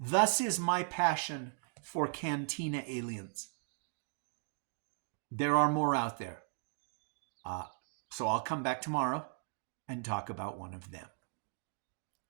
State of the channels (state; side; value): silent; left; 53 dB below the other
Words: is my passion for Cantina aliens. There are more out there. So I'll come back tomorrow and talk about one of them.